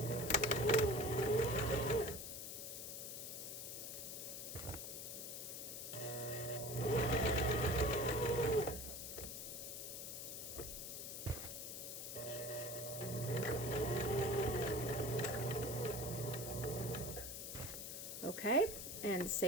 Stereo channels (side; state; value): left; noise; hiss, 6 dB below the sound